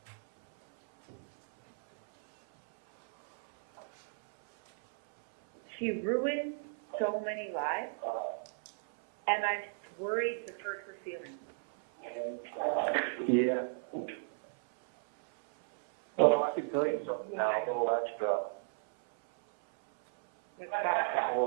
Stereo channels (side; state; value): left; silent; 55 dB below the other